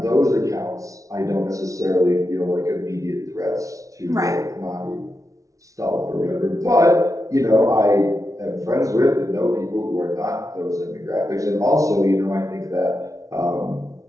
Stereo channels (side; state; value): left; late; 0.16 ms